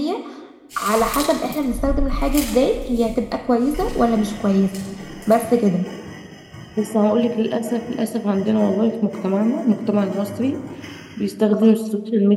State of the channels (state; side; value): identical; both; correlation 1.00